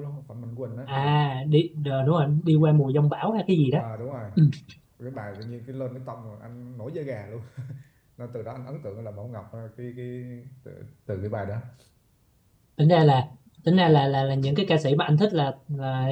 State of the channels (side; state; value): both; identical; correlation 1.00